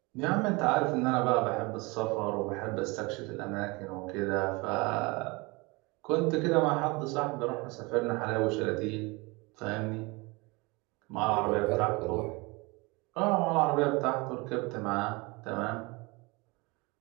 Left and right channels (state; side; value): quieter; left; 25.9 dB